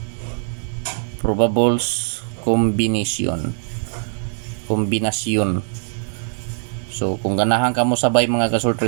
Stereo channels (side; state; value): left; silent; 63 dB below the other